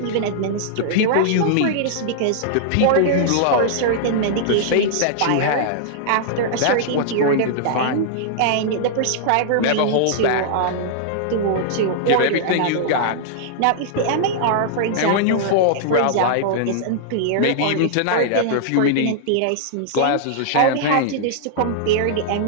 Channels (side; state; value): both; different; correlation -0.01